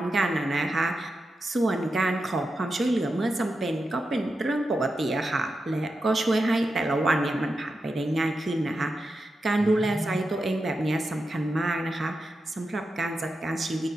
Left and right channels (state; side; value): normal; both; correlation 0.89